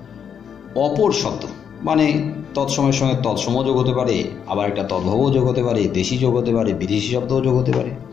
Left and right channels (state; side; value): quieter; right; 7.8 dB